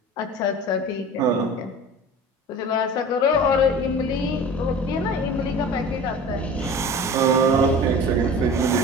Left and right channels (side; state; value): both; normal; correlation 0.38